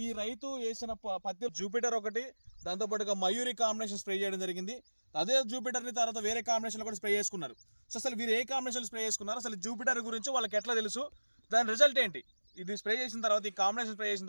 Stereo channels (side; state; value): both; inverted; correlation -1.00